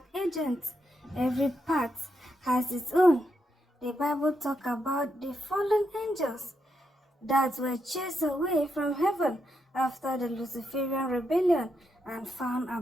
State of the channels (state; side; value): normal; both; correlation 0.82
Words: agents. Every part has its own. The Bible talks about the fallen angels that were chased away from heaven after the Luciferian rebellion and found